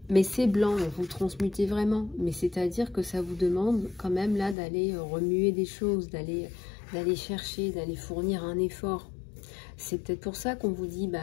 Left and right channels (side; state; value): right; drops out; at 4.5 s